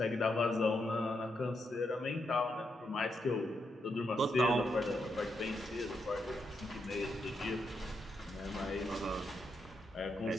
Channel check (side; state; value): both; normal; correlation 0.81